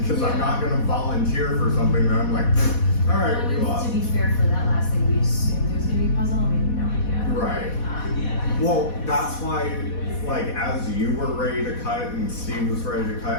because I'm not going to volunteer for something that I'm like, all right, we lost. To be fair, for that last thing, we assumed it was going to be a puzzle, and we had no idea. Right. Well, that's why, like, as you were ready to cut and Steve was ready to cut,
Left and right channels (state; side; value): late; right; 4.1 ms